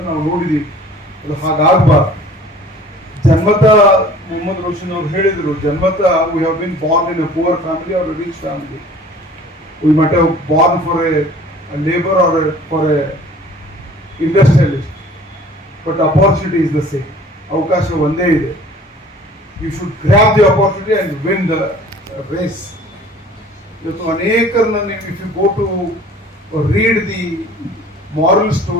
ನಾವು ನೋಡಿದೀವಿ. ಅದು ಹಾಗಾಗಬಾರ್ದು. ಜನ್ಮತ ಮೊಹಮ್ಮದ್ ರೋಷನ್ ಅವರು ಹೇಳಿದರು, ಜನ್ಮತ we have been born in a poor family or a rich family. We must have born for a labour or for a industrialist, but opportunity is the same. ಅವಕಾಶ ಒಂದೇ ಇದೆ. You should grab the opportunity and win the race. ಇವತ್ತು ಅನೇಕರನ್ನ ನೀವು if you go to read the moral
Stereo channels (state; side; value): normal; both; correlation 0.48